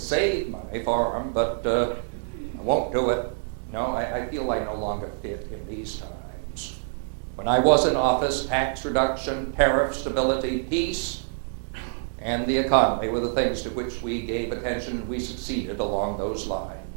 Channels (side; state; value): left; silent; digital silence